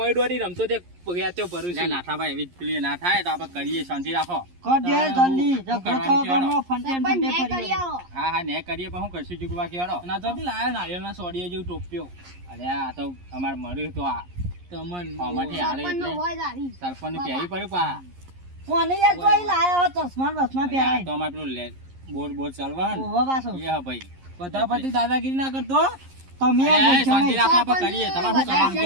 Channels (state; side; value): late; left; 11 ms